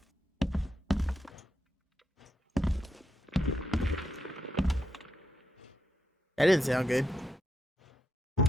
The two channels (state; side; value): normal; both; correlation 0.83